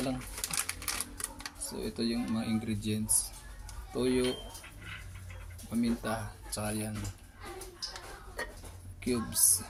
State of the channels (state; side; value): identical; both; correlation 1.00